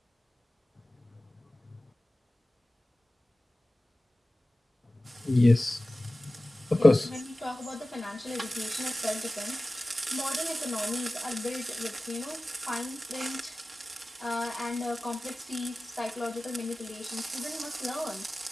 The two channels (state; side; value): normal; both; correlation 0.97